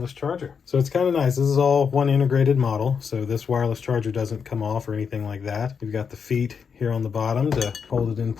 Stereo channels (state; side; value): quieter; right; 6.4 dB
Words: charger. So it's kind of nice. This is all one integrated model. So this wireless charger doesn't come off or anything like that. You've got the feet here on the bottom to hold it in